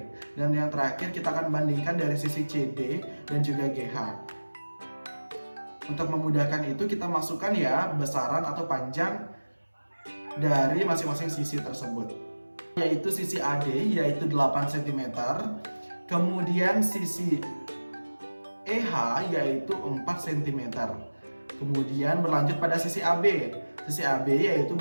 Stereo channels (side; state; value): both; inverted; correlation -1.00